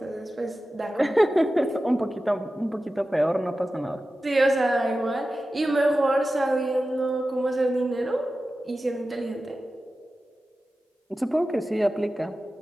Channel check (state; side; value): normal; both; correlation 0.94